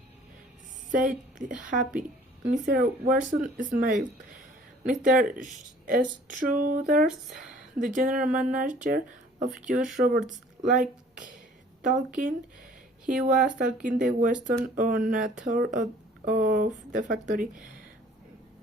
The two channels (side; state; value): both; normal; correlation 0.53